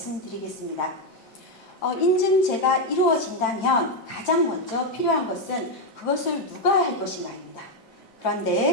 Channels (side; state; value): both; normal; correlation 0.05